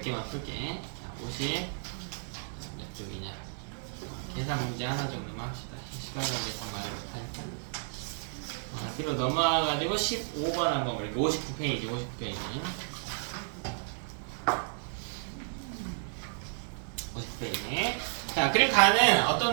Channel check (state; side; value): silent; left; 56 dB below the other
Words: 개만 풀게. 자, 50 몇 쪽이냐. 계산 문제 하나 정도만 합시다. 시간 관계상 말을 못하니까. 뒤로 넘어가가지고 15번 한번 볼게요. 59페이지, 59페이지. 50페이지. 자, 그리고 가는